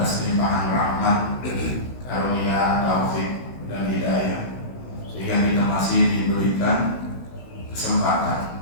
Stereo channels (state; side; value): late; right; 16 ms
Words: limpahan rahmat, karunia, taufik dan hidayah sehingga kita masih diberikan